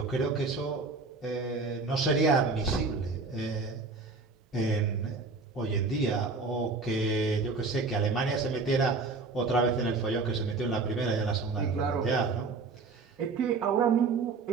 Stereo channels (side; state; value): left; quieter; 4.1 dB